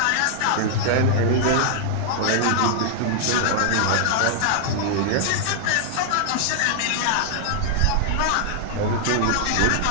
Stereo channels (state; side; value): different; both; correlation 0.00